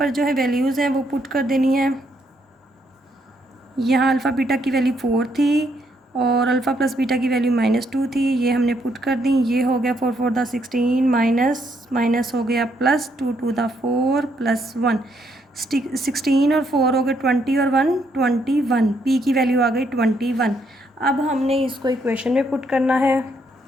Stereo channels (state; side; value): normal; both; correlation 0.74